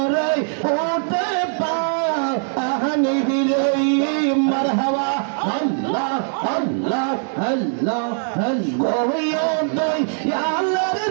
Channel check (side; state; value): left; silent; digital silence